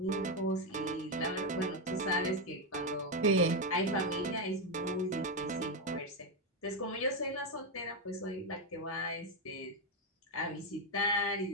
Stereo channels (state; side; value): normal; both; correlation 0.05